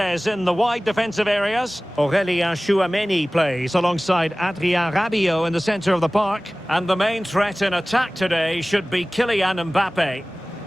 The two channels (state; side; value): normal; both; correlation 0.98